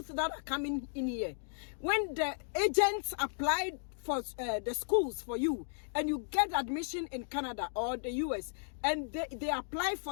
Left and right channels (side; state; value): right; silent; digital silence